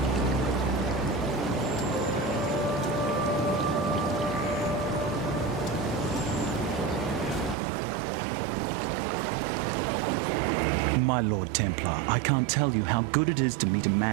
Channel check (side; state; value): left; drops out; at 7.6 s